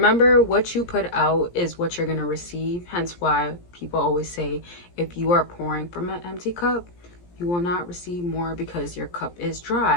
what you put out is what you're going to receive. Hence why people always say, if you are pouring from an empty cup, you will not receive more because your cup is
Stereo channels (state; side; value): late; right; 17 ms